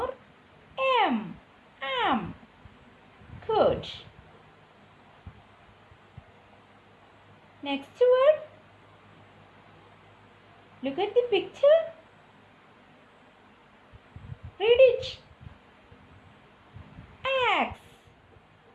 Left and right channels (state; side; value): identical; both; correlation 1.00